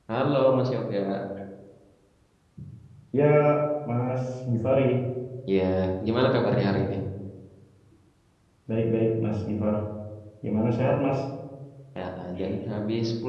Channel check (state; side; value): identical; both; correlation 1.00